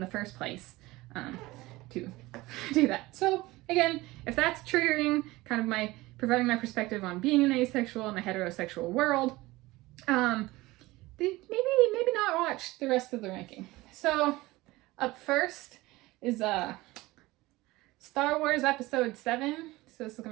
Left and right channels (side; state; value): left; quieter; 19.8 dB